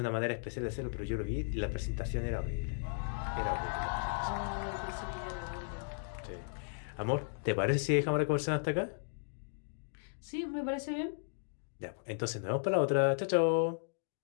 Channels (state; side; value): silent; right; digital silence